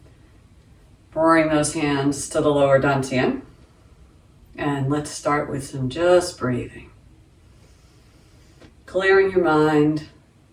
Bring those hands to the lower dantian. And let's start with some just breathing. Clearing your mind.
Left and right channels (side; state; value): both; identical; correlation 1.00